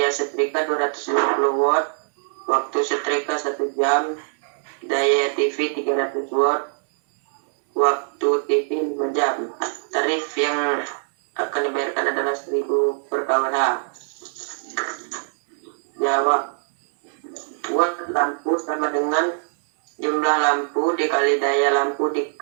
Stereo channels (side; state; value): left; silent; 64 dB below the other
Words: setrika 250 watt, waktu setrika 1 jam, daya TV 300 watt, waktu TV 5 jam. Tarif yang akan dibayarkan adalah 1.000 per kWh. Jawab. Watt lampu sama dengan jumlah lampu dikali daya lampu